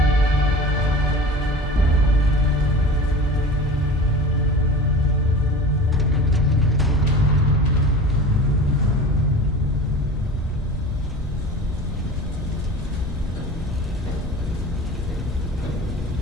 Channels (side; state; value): both; normal; correlation 0.35